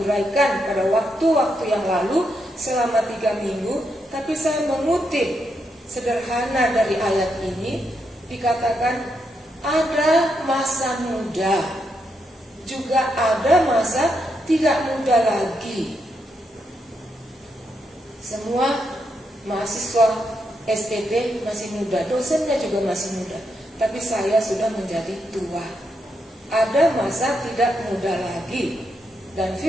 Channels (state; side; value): normal; both; correlation 0.81